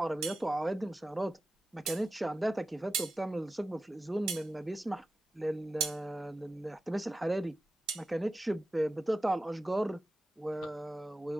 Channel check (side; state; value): both; normal; correlation 0.93